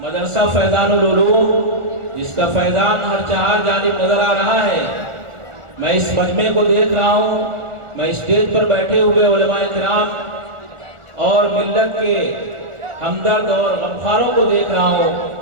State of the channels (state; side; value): late; left; 1.4 ms